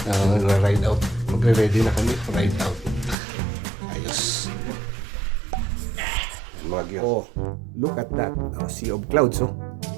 Na-ride out. Magre-ready na kami. Ride out. Ayos. Oh, look at that. Sea of clouds, oh.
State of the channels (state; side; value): drops out; left; at 3.2 s